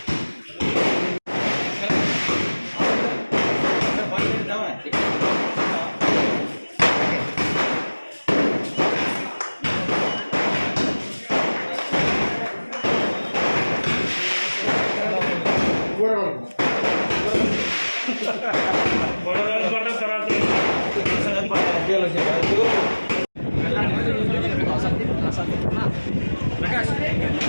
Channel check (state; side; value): inverted; both; correlation -1.00